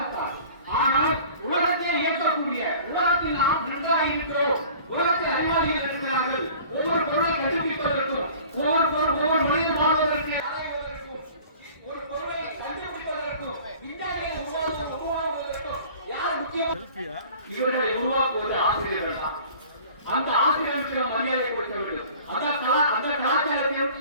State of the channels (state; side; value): inverted; both; correlation -0.46